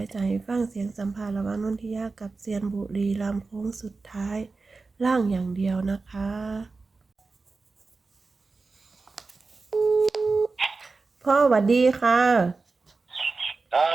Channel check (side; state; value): left; quieter; 4.0 dB